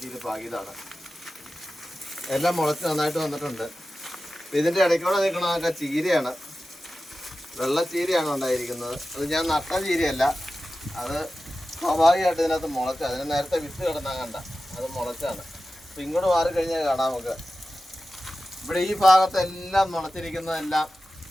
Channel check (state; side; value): normal; both; correlation 0.94